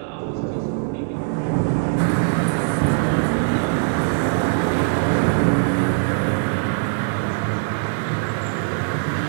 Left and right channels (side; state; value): left; silent; digital silence